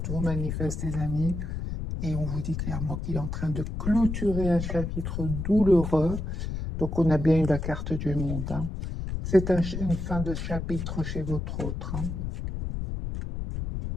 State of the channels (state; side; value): noise; left; rumble, 4 dB below the sound